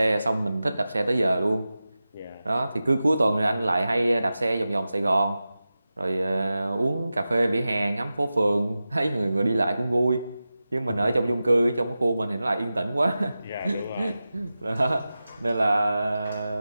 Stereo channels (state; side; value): inverted; both; correlation -0.94